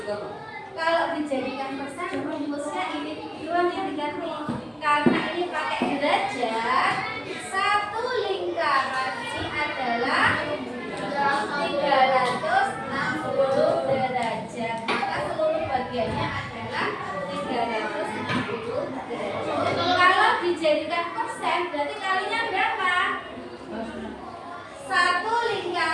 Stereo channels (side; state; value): both; identical; correlation 1.00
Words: juga Bu. Kalau dijadikan persen, rumusnya ini doang yang diganti. Karena ini pakai derajat, satu lingkaran ini adalah 360 derajat. Maka seluruh bagiannya adalah 360 derajat. Kalau dijadikan persen, berarti kalinya berapa? Satu